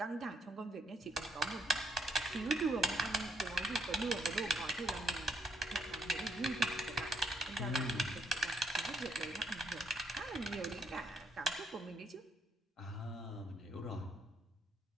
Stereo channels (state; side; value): normal; both; correlation 0.73